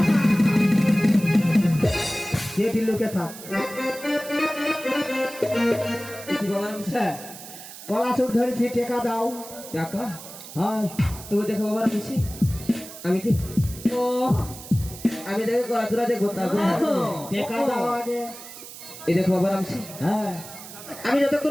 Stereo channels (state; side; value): noise; right; hiss, 14 dB below the sound